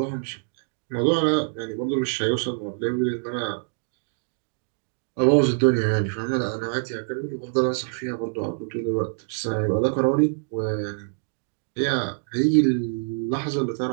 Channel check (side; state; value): left; silent; digital silence